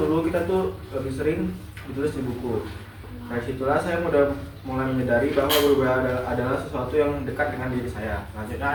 kita tuh lebih sering ditulis di buku. Dari situlah saya mulai menyadari bahwa berubah adalah sesuatu yang dekat dengan diri saya. Selanjutnya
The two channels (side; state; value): both; identical; correlation 1.00